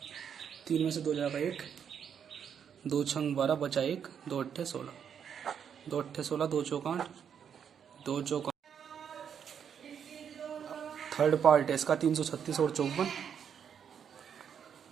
3 में से 2 जाएगा 1, 2 छंग 12 बचा 1, 2 अट्ठे 16, 2 अट्ठे 16, 2 चौक 8, 2 चौक। थर्ड पार्ट है इसका 336 और 54।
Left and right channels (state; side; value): quieter; left; 7.9 dB